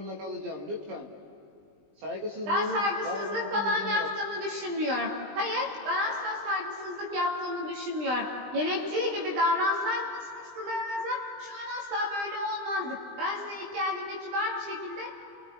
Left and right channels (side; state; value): left; late; 20 ms